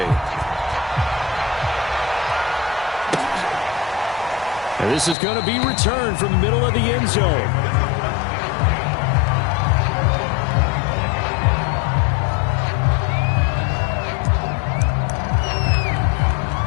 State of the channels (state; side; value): drops out; right; at 5.2 s